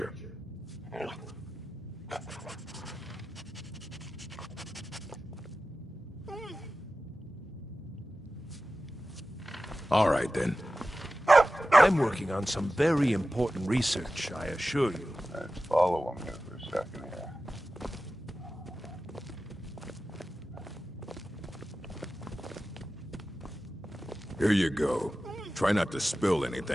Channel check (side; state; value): both; normal; correlation 0.94